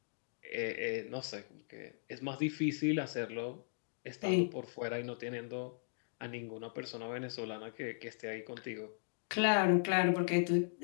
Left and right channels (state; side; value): silent; right; digital silence